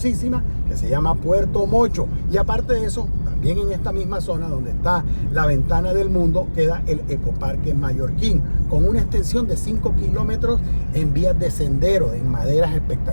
que se llama Puerto Mocho, y aparte de eso, también en esta misma zona donde está la Ventana del Mundo, queda el Ecoparque Mallorquín, con una extensión de 5 kilómetros en vías de sendero, en maderas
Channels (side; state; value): both; inverted; correlation -1.00